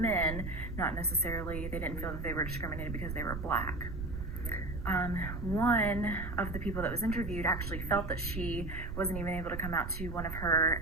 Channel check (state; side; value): noise; right; rumble, 6 dB below the sound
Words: not necessarily, they didn't feel that they were discriminated because they were Black. One of the people that was interviewed actually felt that she wasn't even able to come out to one of her